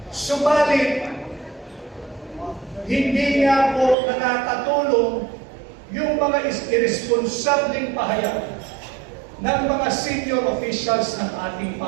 Subalit, hindi nga po nakakatulong yung mga irresponsableng pahayag ng mga senior officials ng ating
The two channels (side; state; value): left; drops out; at 4.0 s